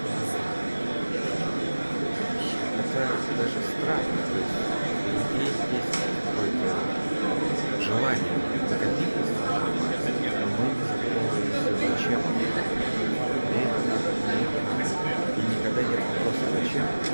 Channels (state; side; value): inverted; both; correlation -1.00